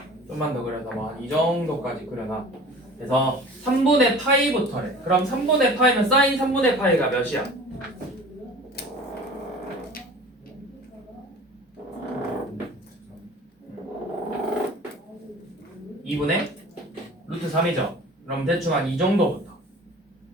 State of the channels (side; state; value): both; normal; correlation 0.42